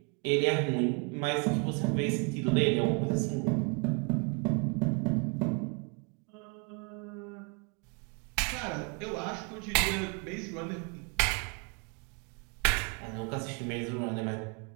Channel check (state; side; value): quieter; left; 34.7 dB